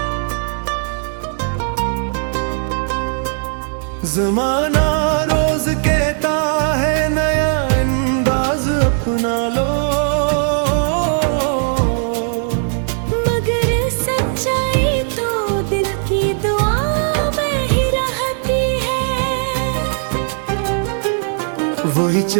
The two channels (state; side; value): silent; left; 66 dB below the other